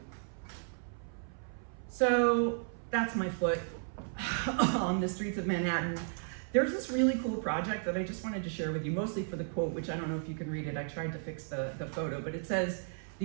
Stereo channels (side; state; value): left; silent; 55 dB below the other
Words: So that's my foot on the streets of Manhattan. There's this really cool project that I just wanted to share with you, mostly for the quote, which I don't know if you can read it. I tried to fix the photo, but it says,